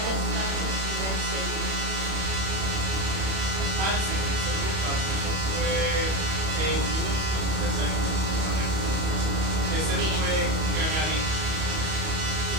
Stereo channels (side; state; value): left; late; 31 ms